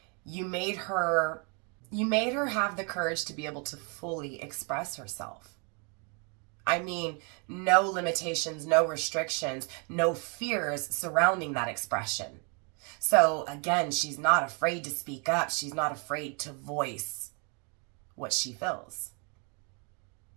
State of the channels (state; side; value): quieter; left; 35.3 dB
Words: You made her have the courage to be able to fully express herself. I mean, no limitations, no restrictions, no fears surrounding that expression. So again, she's not afraid to speak up. She's not afraid to voice what she feels.